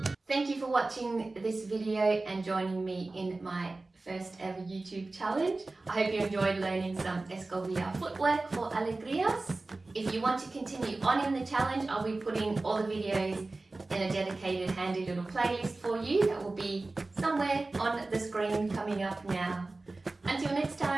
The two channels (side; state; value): left; quieter; 3.2 dB